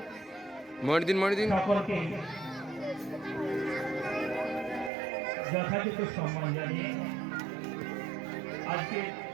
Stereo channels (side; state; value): left; drops out; at 4.9 s